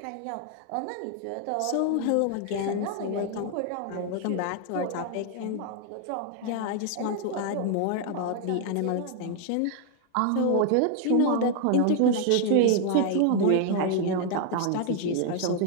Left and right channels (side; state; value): both; different; correlation 0.00